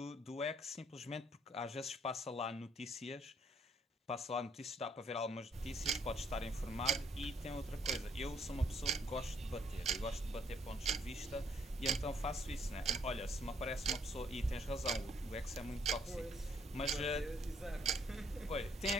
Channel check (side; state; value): both; normal; correlation 0.65